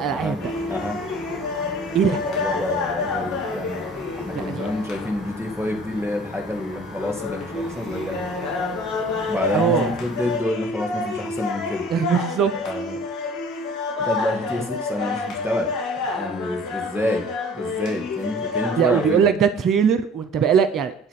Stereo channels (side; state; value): both; normal; correlation 0.48